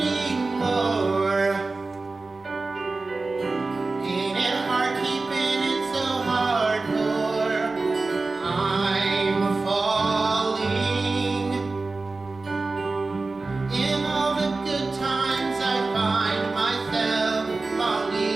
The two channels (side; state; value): left; quieter; 3.6 dB